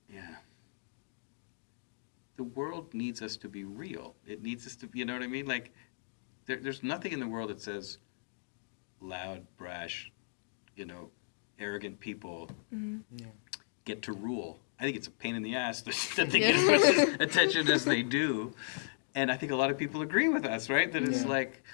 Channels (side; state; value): right; silent; digital silence